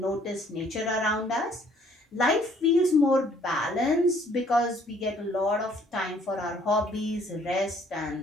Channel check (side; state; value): both; normal; correlation 0.61